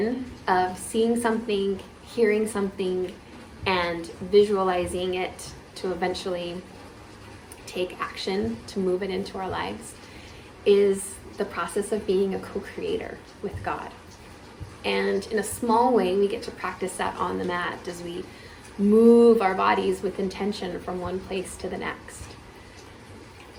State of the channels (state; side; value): identical; both; correlation 1.00